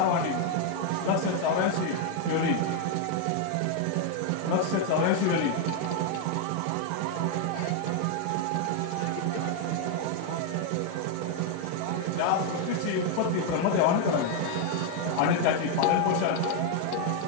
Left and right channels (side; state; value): both; different; correlation 0.00